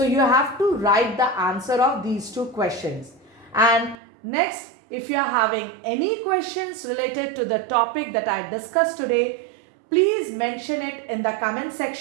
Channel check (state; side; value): drops out; left; at 4.0 s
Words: you have to write the answer of these two questions. And next, if you are having any questions related to the topic that I discussed today, please mention it in the comment